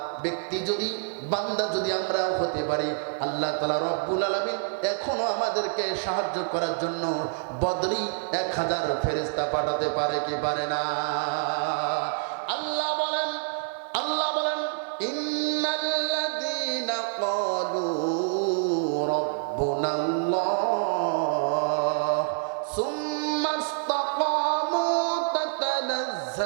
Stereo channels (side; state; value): left; silent; digital silence